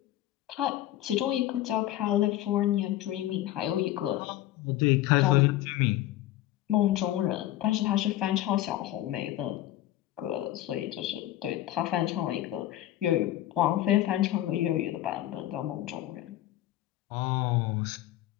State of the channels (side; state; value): right; quieter; 14.2 dB